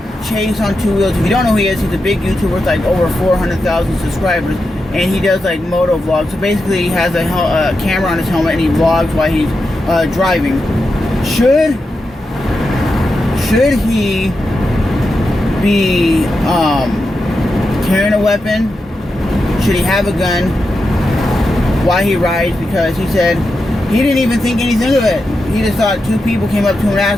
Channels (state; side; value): normal; both; correlation 0.88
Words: Chase on Two Wheels, if you don't know who he is, he's a big YouTuber with like over 400,000 subscribers, and he does like moto vlogs. So basically he has a camera on his helmet and he vlogs while he's driving. Should he be carrying a weapon? Should he have a gun while he rides? Because he said he didn't even think anything of it. He just thought two people came up to him and